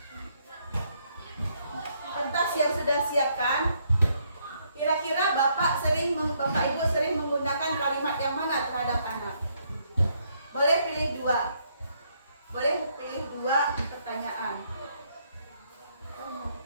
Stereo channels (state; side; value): inverted; both; correlation -0.72